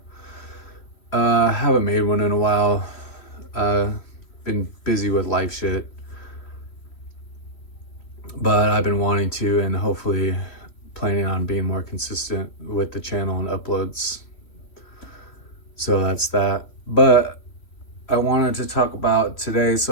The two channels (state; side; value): late; right; 3.1 ms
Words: Haven't made one in a while. Uh, been busy with life shit, but I've been wanting to, and hopefully planning on being more consistent with the channel and uploads. So that's that. But I wanted to talk about today.